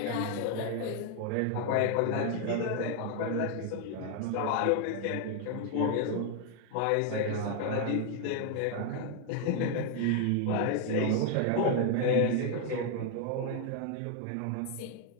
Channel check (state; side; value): different; both; correlation 0.00